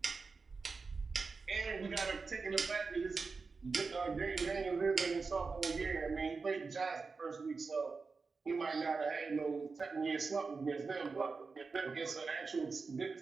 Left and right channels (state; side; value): quieter; left; 4.5 dB